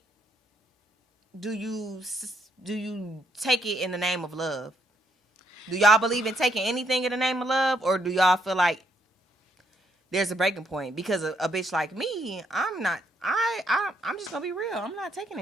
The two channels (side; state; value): both; normal; correlation 0.74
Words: do you take it in the name of love? Do y'all believe in taking anything in the name of love, or do y'all feel like there's a breaking point? Because a bitch like me, I'm just gonna be real. I'm not taking